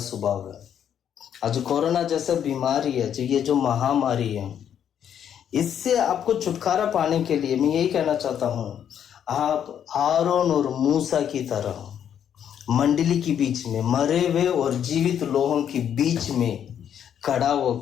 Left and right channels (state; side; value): quieter; right; 9.1 dB